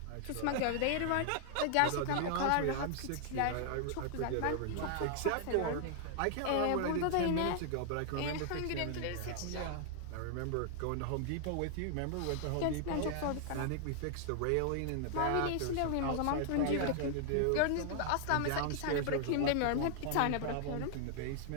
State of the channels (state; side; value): different; both; correlation -0.01